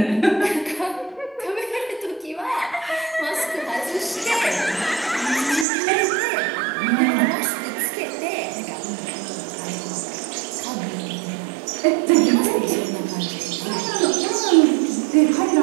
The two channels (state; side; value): drops out; left; at 5.7 s